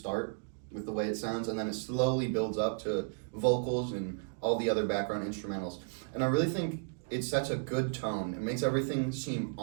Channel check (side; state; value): left; silent; digital silence